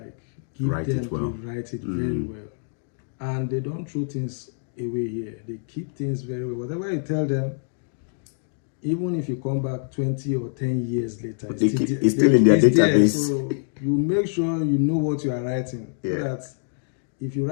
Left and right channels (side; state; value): right; silent; digital silence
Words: it very well, and they don't throw things away here. They keep things very well. Whatever you tell them, even if you come back 20 or 10 years later, it's still in their database. So you make sure you know what you are writing, so that if you